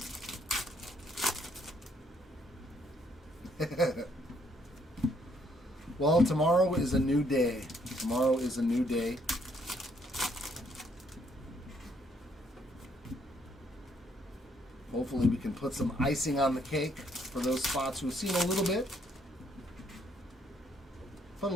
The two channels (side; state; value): both; normal; correlation 0.69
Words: Well, tomorrow is a new day. Tomorrow is a new day. Hopefully we can put some icing on the cake for those spots who've seen a little bit. But a